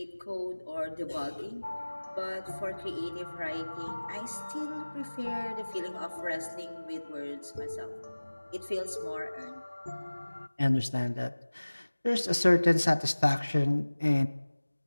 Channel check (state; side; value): inverted; both; correlation -1.00